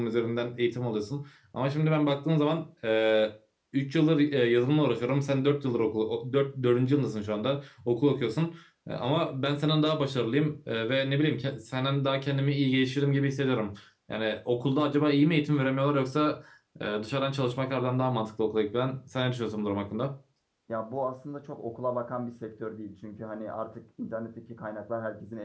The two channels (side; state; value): both; identical; correlation 1.00